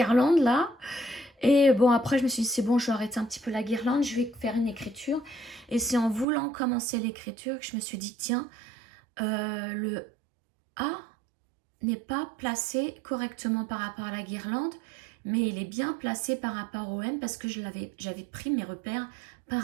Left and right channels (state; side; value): drops out; left; at 6.2 s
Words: là. Et bon, après, je me suis dit, c'est bon, je vais arrêter un petit peu la guirlande, je vais faire une écriture. Et c'est en voulant commencer l'écriture que je me suis dit, tiens, le A n'est pas placé correctement par rapport à la guirlande, mais il est bien placé par rapport au M parce que j'avais pris mes repères par